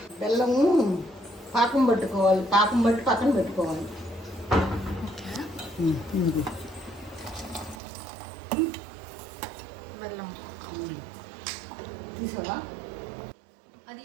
బెల్లము పాకం పట్టుకోవాలి. పాకం బట్టి పక్కన పెట్టుకోవాలి. బెల్లం తీసావా? అది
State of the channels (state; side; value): drops out; left; at 7.8 s